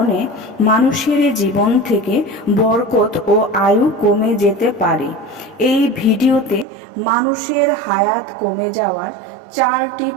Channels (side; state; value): left; drops out; at 6.7 s